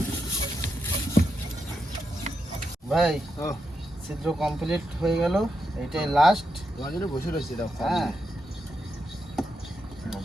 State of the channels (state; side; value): normal; both; correlation 0.85